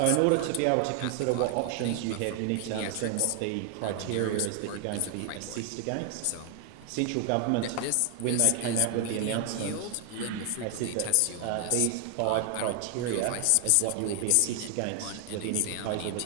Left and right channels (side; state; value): both; different; correlation 0.00